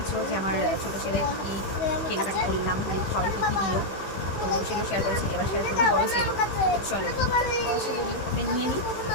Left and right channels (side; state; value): right; late; 15 ms